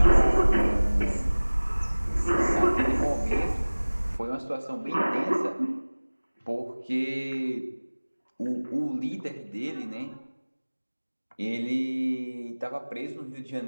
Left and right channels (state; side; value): inverted; both; correlation -1.00